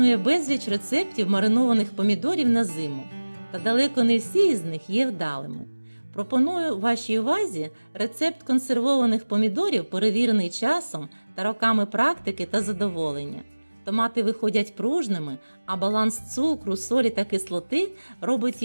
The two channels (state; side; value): inverted; both; correlation -1.00